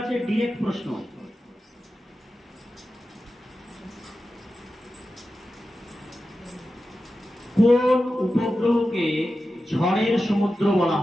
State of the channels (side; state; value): both; normal; correlation 0.92